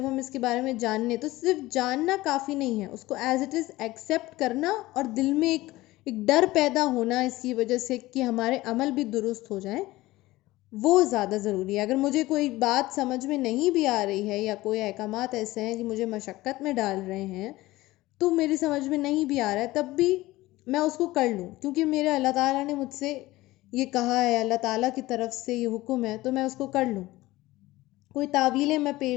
ہم اس کے بارے میں جانیں، تو صرف جاننا کافی نہیں ہے، اس کو ایز اٹ از ایکسیپٹ کرنا، اور دل میں ایک ڈر پیدا ہونا اس کی وجہ سے کہ ہمارے عمل بھی درست ہو جائیں، وہ زیادہ ضروری ہے۔ اگر مجھے کوئی بات سمجھ میں نہیں بھی آ رہی ہے، یا کوئی احکامات ایسے ہیں کہ مجھے مشقت میں ڈال رہے ہیں، تو میری سمجھ میں نہیں بھی آ رہا ہے، تب بھی میں اس کو کر لوں، کیونکہ میرے اللہ تعالیٰ نے مجھ سے یہ کہا ہے، اللہ تعالیٰ کی طرف سے یہ حکم ہے، تو میں اس کو کر لوں۔ کوئی تعویلیں میں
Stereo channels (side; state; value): right; quieter; 18.3 dB